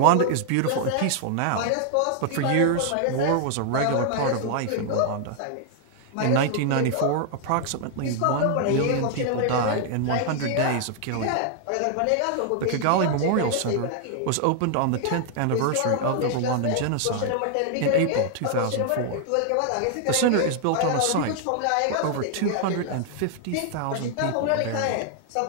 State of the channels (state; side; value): different; both; correlation 0.00